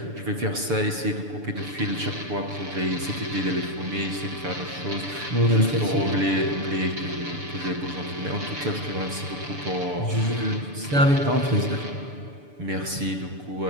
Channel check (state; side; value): late; left; 6.9 ms